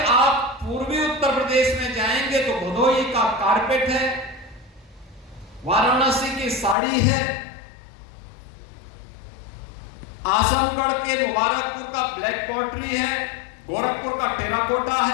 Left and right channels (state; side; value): drops out; right; at 6.8 s